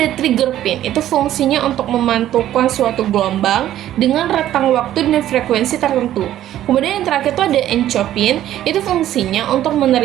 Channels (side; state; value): left; quieter; 12.6 dB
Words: trigger pin, itu fungsinya untuk memantulkan suatu gelombang dengan rentang waktu dan frekuensi tertentu. Kemudian yang terakhir itu ada encopin, itu fungsinya untuk